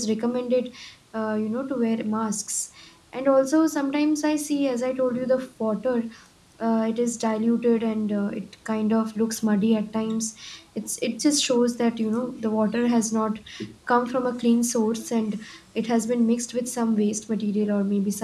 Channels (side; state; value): both; identical; correlation 1.00